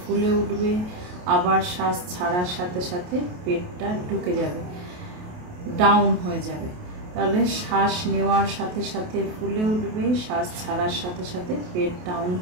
উঠবে, আবার শ্বাস ছাড়ার সাথে সাথে পেটটা ঢুকে যাবে, ডাউন হয়ে যাবে। তাহলে শ্বাস নেওয়ার সাথে সাথে ফুলে উঠবে, শ্বাস ছাড়ার সাথে সাথে পেট ডাউন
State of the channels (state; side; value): late; left; 28 ms